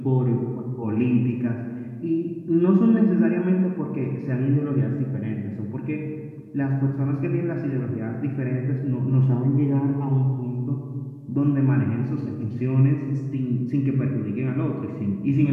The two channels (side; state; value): both; identical; correlation 1.00